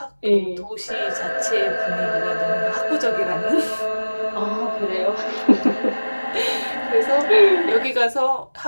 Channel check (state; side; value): inverted; both; correlation -1.00